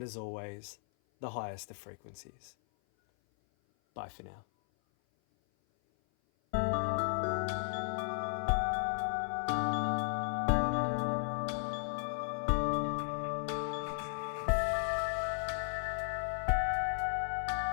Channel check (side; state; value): right; silent; 54 dB below the other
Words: as always, the highest of frequencies. Bye for now.